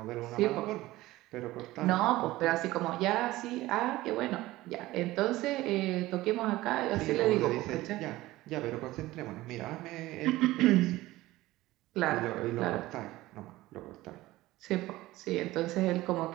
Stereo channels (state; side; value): quieter; left; 17.6 dB